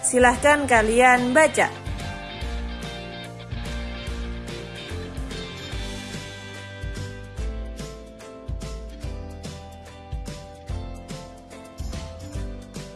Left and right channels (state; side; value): identical; both; correlation 1.00